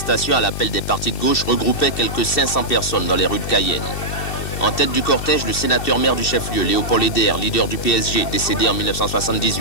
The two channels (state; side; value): late; right; 2.7 ms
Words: à l'appel des partis de gauche regroupait quelques 500 personnes dans les rues de Cayenne. En tête du cortège, le sénateur-maire du chef-lieu, Léopold Eder, leader du PSG, décédé en